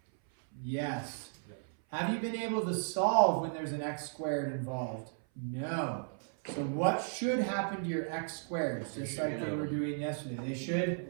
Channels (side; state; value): left; silent; 55 dB below the other